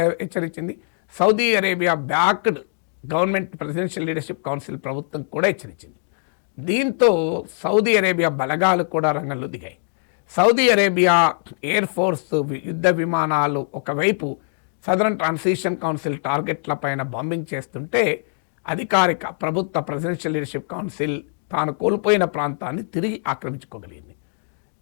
హెచ్చరించింది, Saudi Arabia backed government presidential leadership council ప్రభుత్వం కూడా హెచ్చరించింది. దీంతో సౌదీ అరేబియా బలగాలు కూడా రంగంలో దిగాయి. సౌదీ అరేబియా ఎయిర్ ఫోర్స్ యుద్ధ విమానాలు ఒకవైపు సదరన్ ట్రాన్సిషన్ కౌన్సిల్ టార్గెట్ల పైన బాంబింగ్ చేస్తుంటే అధికారిక ప్రభుత్వ ప్రెసిడెన్షియల్ లీడర్షిప్ కౌన్సిల్ తాను కోల్పోయిన ప్రాంతాన్ని తిరిగి ఆక్రమించుకోగలిగింది.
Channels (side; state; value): right; silent; digital silence